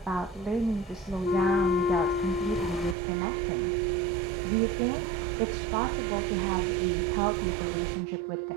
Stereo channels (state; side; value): drops out; left; at 3.0 s